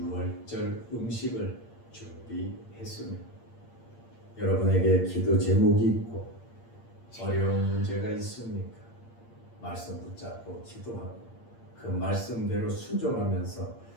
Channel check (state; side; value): late; right; 8.7 ms